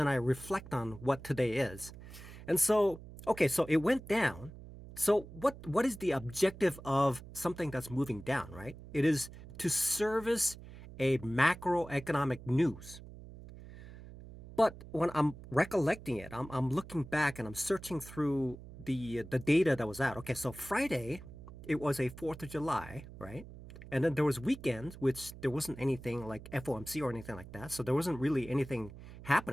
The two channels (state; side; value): noise; right; hum, 15 dB below the sound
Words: I reflect on what today is. And so, okay, so it went down. So what is the objective of something that's moving down, right? It is to service a macroeconomic news. But when I'm recollecting it, I'm looking back and I'm searching through the data that was out. Okay, so Friday, it was a 4th of July, right? And then there was weekends, which there wasn't anything like FOMC or anything like that. So there wasn't really anything